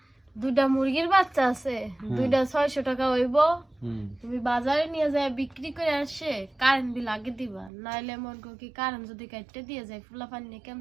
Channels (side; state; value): left; drops out; at 7.7 s